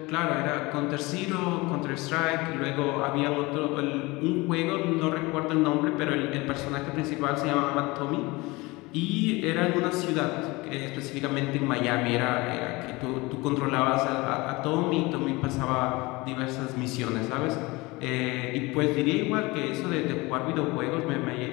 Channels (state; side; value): quieter; right; 23.1 dB